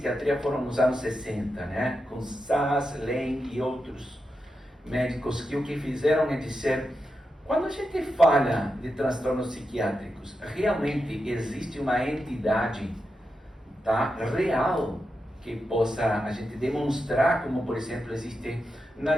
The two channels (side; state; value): both; normal; correlation 0.88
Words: foram nos anos 60, né? Com Sass, Lane e outros médicos que o que fizeram é dizer, quando a gente fala de transtornos psiquiátricos, realmente existe uma entidade, tá, real que possa a gente demonstrar, como por exemplo existe na